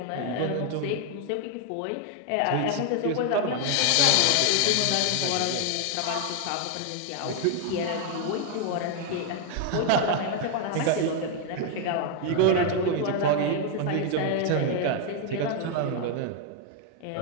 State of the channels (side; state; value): both; different; correlation 0.00